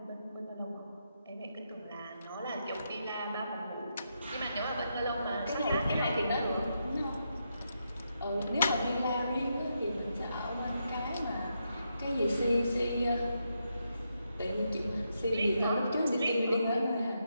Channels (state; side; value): inverted; both; correlation -0.82